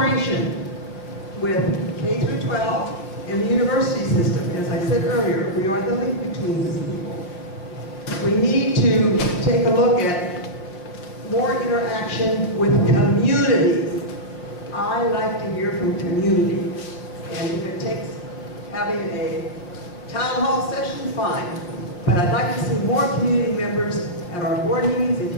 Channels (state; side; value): late; right; 5.5 ms